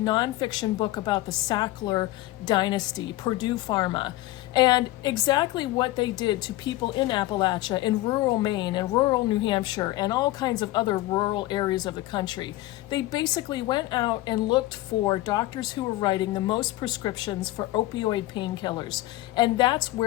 book about the Sackler dynasty, Purdue Pharma, and exactly what they did to people in Appalachia, in rural Maine, and rural New Hampshire, and all kinds of other rural areas of the country. They basically went out and looked for doctors who were writing the most prescriptions for opioid painkillers, and that's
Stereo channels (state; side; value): quieter; right; 17.4 dB